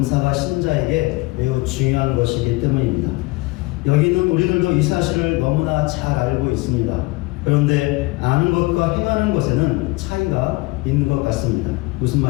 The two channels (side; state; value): right; quieter; 23.4 dB